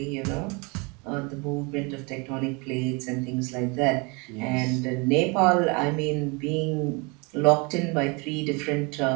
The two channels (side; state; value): left; quieter; 29.7 dB